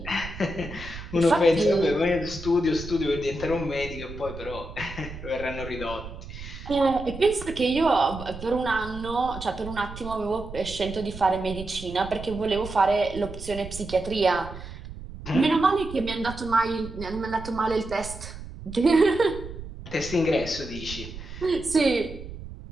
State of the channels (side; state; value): right; noise; rumble, 12 dB below the sound